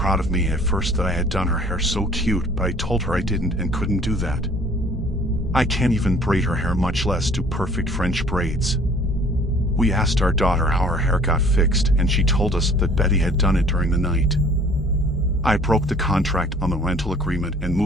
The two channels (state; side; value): normal; both; correlation 0.53